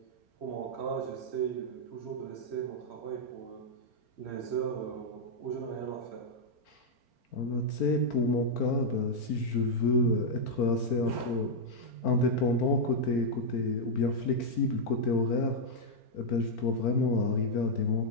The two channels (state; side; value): late; right; 4.4 ms